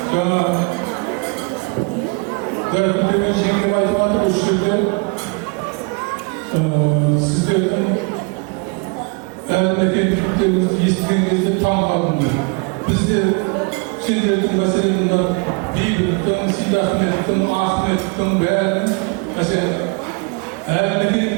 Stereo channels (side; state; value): left; quieter; 32.0 dB